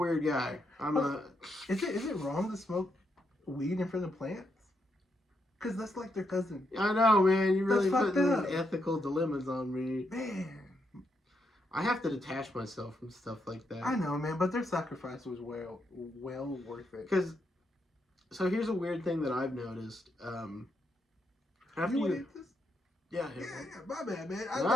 guy. Is it wrong to smoke weed in front of plants? Because that's like their cousin. I know, man. You really put these ethical dilemmas on me. Man. I have to detach myself from stuff like that. I know, man, but their sacrifice was well worth it. So here's a weird thing that I've noticed. After you eat this? Yeah, my bad, man.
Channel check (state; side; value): normal; both; correlation 0.80